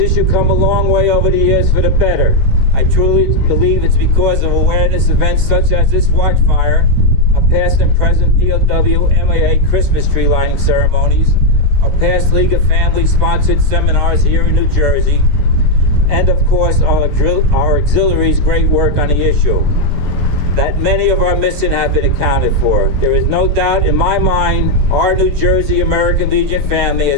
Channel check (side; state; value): both; normal; correlation 0.02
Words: come a long way over the years for the better. I truly believe it's because of awareness events such as this Watchfire, our past and present POW MAA Christmas tree lighting ceremonies, our past League of Families sponsored seminars here in New Jersey, and of course our auxiliaries' great work on the issue, that many of our missing have been accounted for. There is no doubt in my mind our New Jersey American Legion family